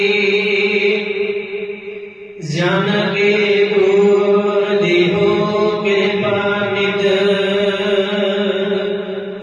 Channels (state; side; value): identical; both; correlation 1.00